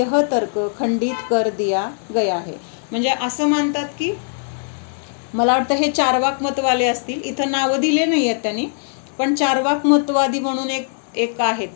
तर्क खंडित कर दिया गया है. म्हणजे असं मानतात की, मला वाटतं हे चारवाक मतवाले असतील, इथं नावं दिले नाही आहेत त्यांनी, पण चारवाक मतवादी म्हणून एक आहेत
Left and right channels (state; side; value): silent; right; 57 dB below the other